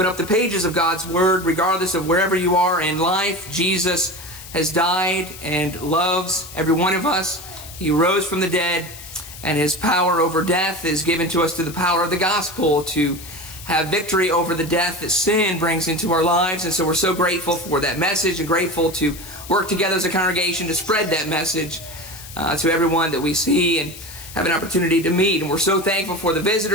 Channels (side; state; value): left; noise; hiss, 15 dB below the sound